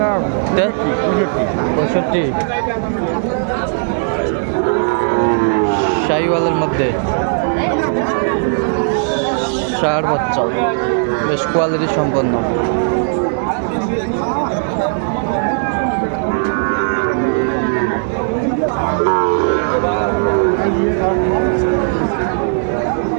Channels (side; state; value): left; silent; 69 dB below the other